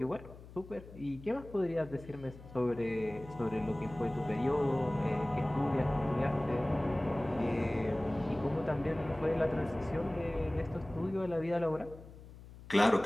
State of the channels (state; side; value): noise; left; hum, 17 dB below the sound